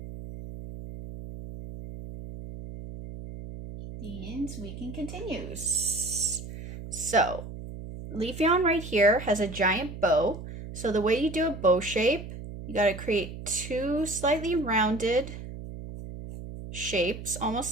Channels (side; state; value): right; noise; hum, 11 dB below the sound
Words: And we can continue. So, Leafeon right here has a giant bow. So the way you do a bow shape, you got to create 2 slightly rounded shapes,